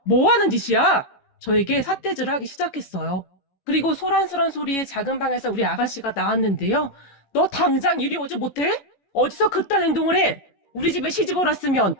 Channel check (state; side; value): late; right; 15 ms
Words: 뭐 하는 짓이야? 저에게 삿대질을 하기 시작했어요. 그리고 소란스런 소리에 작은 방에서 우리 아가씨가 나왔는데요. 너 당장 이리 오지 못해? 어디서 그딴 행동을 해? 우리 집에 시집을 왔으면